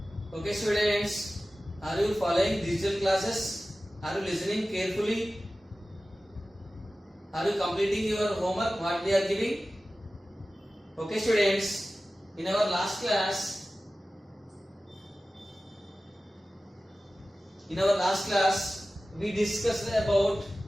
Okay, students, are you following digital classes? Are you listening carefully? Are you completing your homework? What we are giving? Okay, students. In our last class, we discussed about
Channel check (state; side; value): normal; both; correlation 0.96